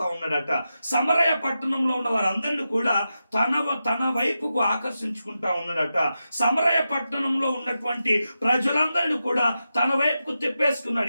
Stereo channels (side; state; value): both; inverted; correlation -0.90